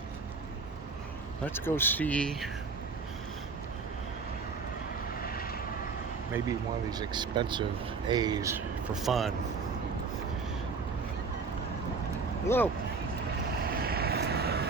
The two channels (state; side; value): quieter; left; 4.7 dB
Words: let's go see maybe one of these expensive A's for fun. Hello.